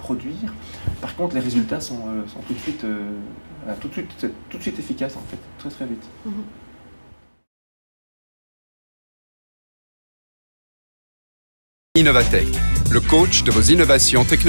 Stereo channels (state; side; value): inverted; both; correlation -1.00